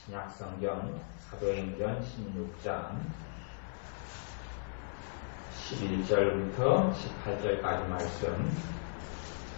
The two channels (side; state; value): right; silent; 54 dB below the other